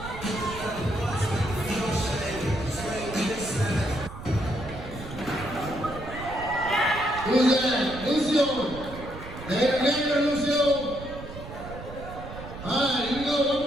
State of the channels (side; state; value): right; noise; rumble, 12 dB below the sound